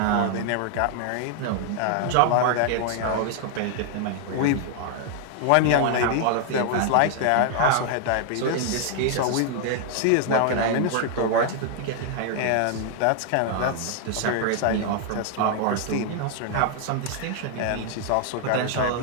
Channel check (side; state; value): both; different; correlation 0.00